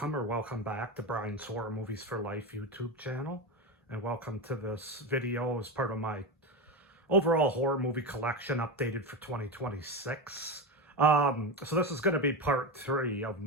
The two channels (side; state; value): both; normal; correlation 0.17